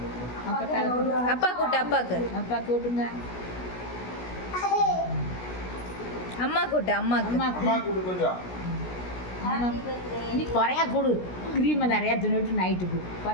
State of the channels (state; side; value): late; right; 16 ms